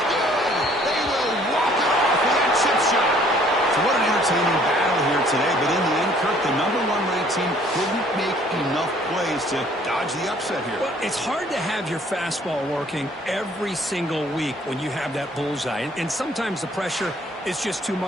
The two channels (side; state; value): both; normal; correlation 0.59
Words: good. They will walk it off with that chip shot. So what an entertaining battle here today. But in the end, Kirk, the #1 ranked team couldn't make enough plays to dodge the upset here. Well, it's hard to have your fastball working every single week when you have that bullseye. And sometimes the pressure is just too